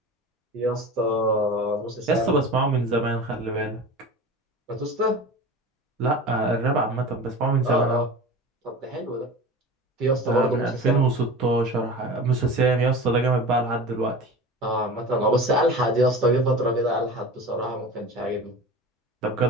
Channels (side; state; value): both; normal; correlation 0.34